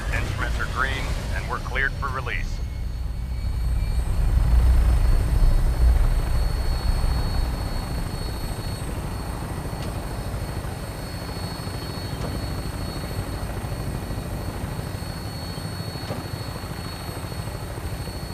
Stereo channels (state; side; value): identical; both; correlation 1.00